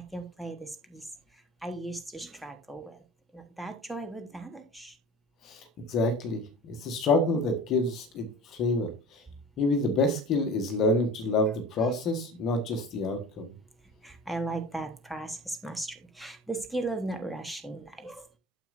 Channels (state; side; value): normal; both; correlation 0.37